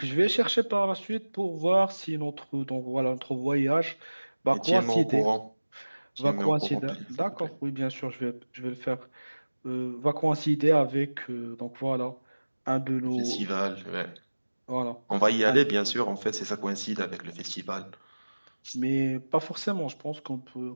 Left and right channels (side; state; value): both; inverted; correlation -1.00